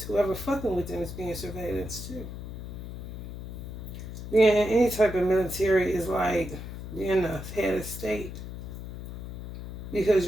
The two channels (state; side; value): noise; left; hum, 9 dB below the sound